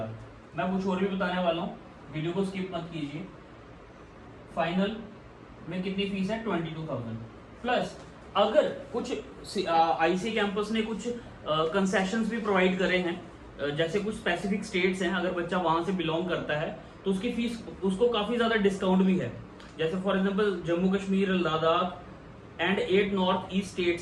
मैं कुछ और भी बताने वाला हूँ, वीडियो को स्किप मत कीजिए। फाइनल में कितनी फीस है? 22,000 प्लस अगर कुछ आईसी कैंपस ने कुछ कंसेशंस भी प्रोवाइड करे हैं, जैसे कुछ स्पेसिफिक स्टेट्स हैं, अगर बच्चा वहां से बिलोंग करता है तो उसकी फीस, उसको काफी ज्यादा डिस्काउंट भी है। जैसे for example Jammu Kashmir, Ladakh and 8 north east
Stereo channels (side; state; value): both; identical; correlation 1.00